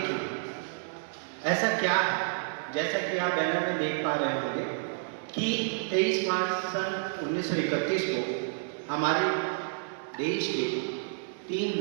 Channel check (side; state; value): left; silent; digital silence